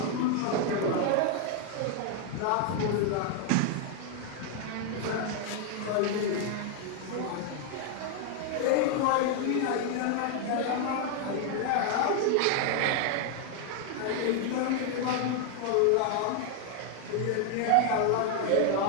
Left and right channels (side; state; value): both; different; correlation 0.00